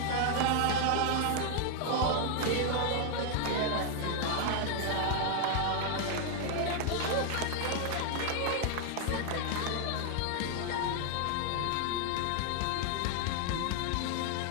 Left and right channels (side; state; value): both; different; correlation 0.00